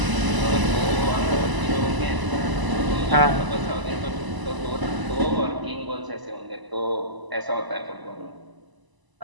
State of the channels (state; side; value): late; left; 1.0 ms